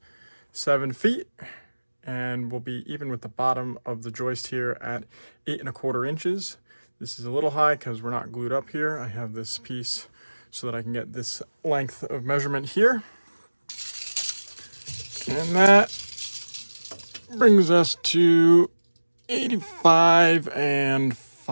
7 feet. And we'll be even with the bottom of the joist here at 8.25 inches. This is a little high because we're not glued up here. I have this piece so that I can get this length of measurement here. And that brings us to 85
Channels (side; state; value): both; inverted; correlation -1.00